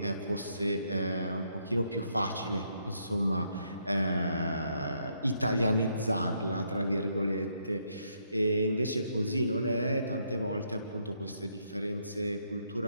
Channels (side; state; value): both; inverted; correlation -0.74